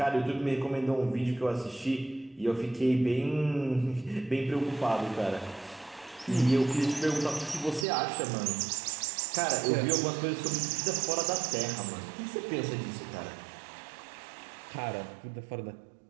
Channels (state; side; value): drops out; left; at 7.9 s